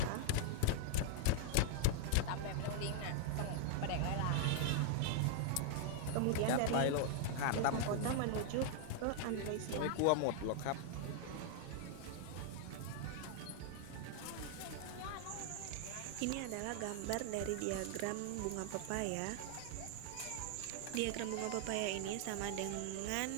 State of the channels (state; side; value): different; both; correlation 0.00